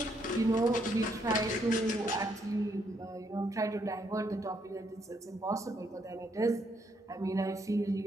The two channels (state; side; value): normal; both; correlation 0.74